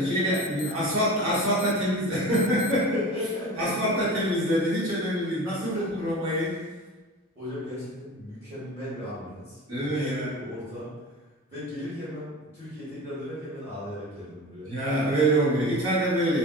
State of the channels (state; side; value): normal; both; correlation 0.34